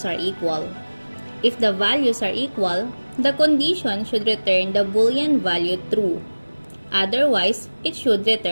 are equal. If the values are equal, the condition should return the Boolean value true. Otherwise, it should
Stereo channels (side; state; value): both; inverted; correlation -1.00